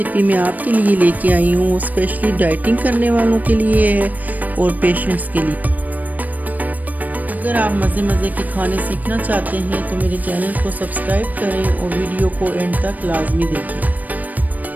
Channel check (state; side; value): late; left; 0.080 ms